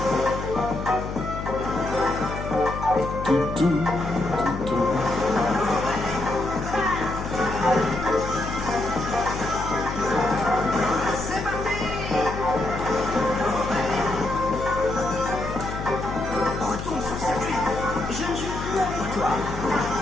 Retourne sur circuit. Je ne joue plus avec toi.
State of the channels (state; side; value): noise; left; hum, 7 dB below the sound